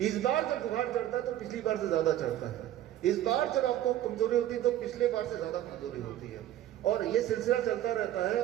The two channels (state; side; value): quieter; left; 12.6 dB